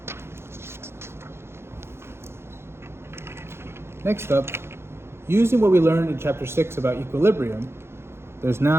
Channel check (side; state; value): left; late; 0.12 ms